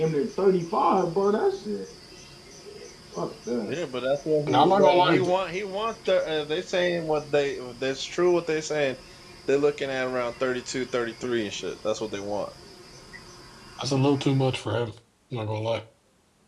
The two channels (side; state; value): both; identical; correlation 1.00